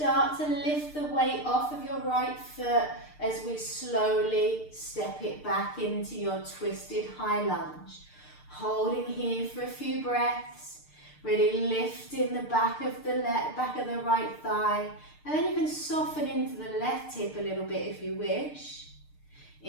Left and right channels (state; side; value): late; right; 6.6 ms